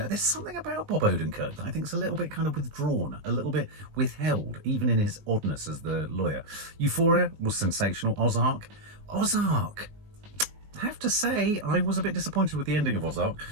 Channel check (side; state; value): left; late; 19 ms